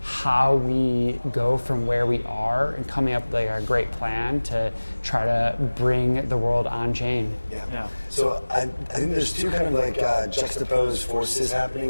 how we go from where we are and coming up with a great plan to try to bring the world on chain. Yeah. So I think there's two kind of juxtaposed forces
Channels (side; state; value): both; inverted; correlation -1.00